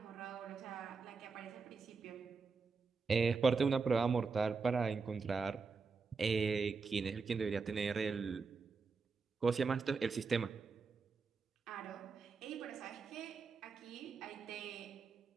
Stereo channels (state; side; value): quieter; left; 4.7 dB